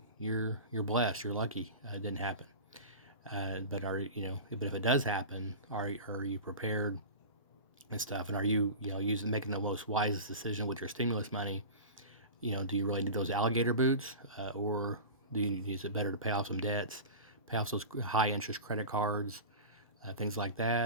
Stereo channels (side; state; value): both; inverted; correlation -0.31